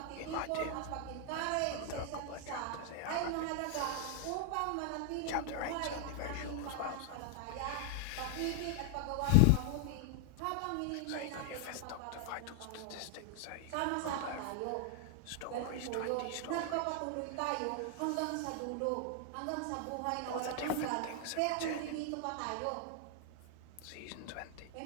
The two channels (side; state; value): both; different; correlation 0.00